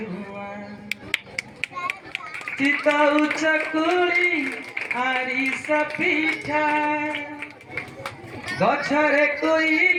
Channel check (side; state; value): both; identical; correlation 1.00